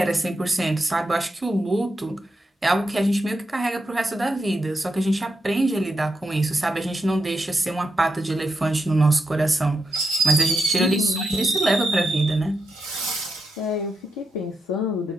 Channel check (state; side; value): normal; both; correlation 0.84